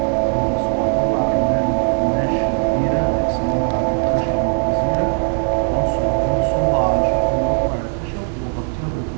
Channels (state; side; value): silent; left; 55 dB below the other